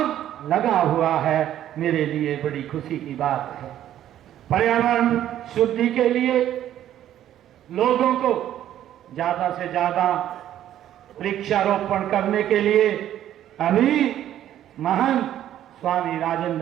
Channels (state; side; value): quieter; left; 11.7 dB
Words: लगा हुआ है। मेरे लिए बड़ी खुशी की बात है। पर्यावरण शुद्धि के लिए लोगों को ज्यादा से ज्यादा वृक्षारोपण करने के लिए अभी महान स्वामी